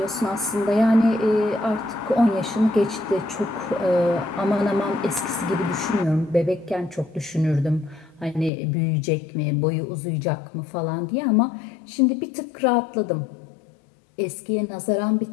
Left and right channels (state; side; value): drops out; right; at 8.5 s